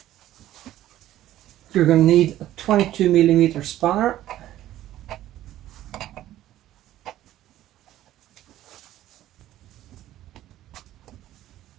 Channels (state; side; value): quieter; left; 13.6 dB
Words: You're going to need a 22 millimeter spanner.